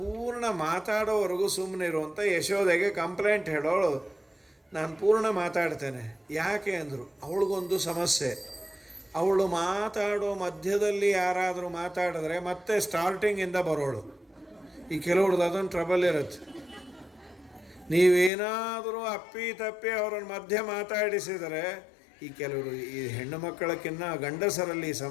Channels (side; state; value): right; drops out; at 18.3 s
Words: ಮಾತಾಡೋವರೆಗೂ ಸುಮ್ಮನಿರು ಅಂತ ಯಶೋದೆಗೆ ಕಂಪ್ಲೇಂಟ್ ಹೇಳೋಳು. ನಾನು ಪೂರ್ಣ ಮಾತಾಡ್ತೇನೆ. ಯಾಕೆ ಅಂದರು, ಅವಳಿಗೊಂದು ಸಮಸ್ಯೆ. ಅವಳು ಮಾತಾಡೋ ಮಧ್ಯದಲ್ಲಿ ಯಾರಾದರೂ ಮಾತಾಡಿದ್ರೆ ಮತ್ತೆ ಸ್ಟಾರ್ಟಿಂಗಿಂದ ಬರೋಳು. ಈ ಕೆಲವ್ರದ್ದು ಅದೊಂದು ಟ್ರಬಲ್ ಇರುತ್ತೆ. ನೀವೇನಾದರೂ ಅಪ್ಪಿ ತಪ್ಪಿ ಅವ್ರನ್ನ ಮಧ್ಯೆ ಮಾತಾಡಿಸಿದರೆ, ಈ ಕೆಲವರು ಈ ಹೆಣ್ಣು ಮಕ್ಕಳಕ್ಕಿನ್ನ ಗಂಡಸರಲ್ಲಿ